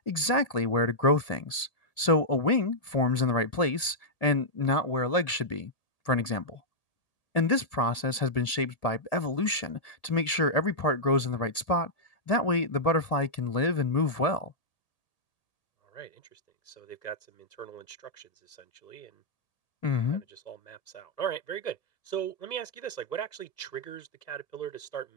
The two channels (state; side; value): late; right; 1.8 ms